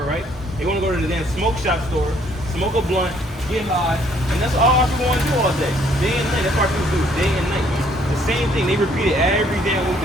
right? They want to go to the damn smoke shop store, smoke a blunt, get high, and that's all our people want to do all day. Day and night, that's what our people do, day and night. The same thing, they repeat it every damn week,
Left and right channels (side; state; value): both; normal; correlation 0.64